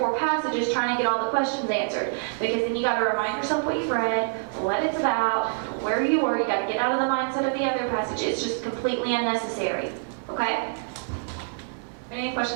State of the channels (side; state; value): left; silent; digital silence